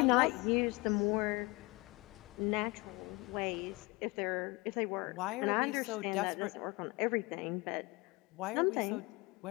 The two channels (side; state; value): right; quieter; 25.1 dB